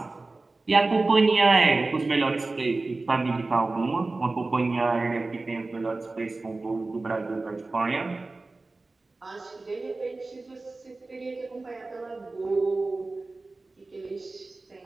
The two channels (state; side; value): quieter; left; 3.4 dB